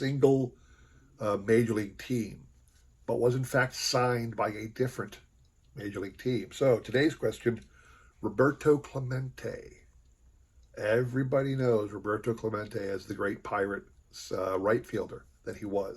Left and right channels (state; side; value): identical; both; correlation 1.00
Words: major league team, but was in fact signed by a different major league team. So today's question, Roberto Clemente. Everybody knows Roberto Clemente as the great Pirates right fielder that he